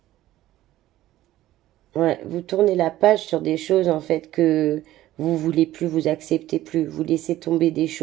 Ouais, vous tournez la page sur des choses en fait que vous voulez plus, vous acceptez plus, vous laissez tomber des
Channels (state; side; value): quieter; left; 14.7 dB